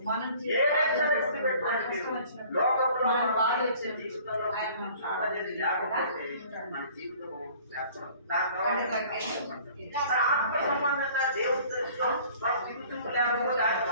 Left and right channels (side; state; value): both; inverted; correlation -0.51